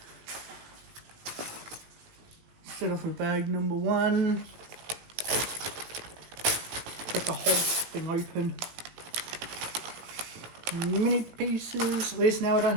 Start off with bag number 1. Got the whole thing open. Mini pieces. At least now I don't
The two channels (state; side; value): late; left; 17 ms